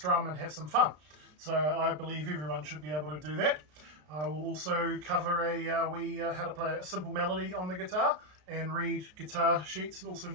and have some fun. So I believe everyone should be able to do that. I will also cover how to play a simple melody on the guitar and read guitar sheets, also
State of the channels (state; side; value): late; left; 33 ms